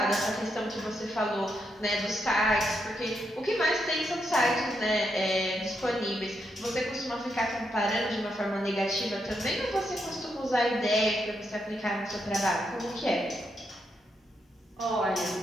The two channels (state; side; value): normal; both; correlation 0.81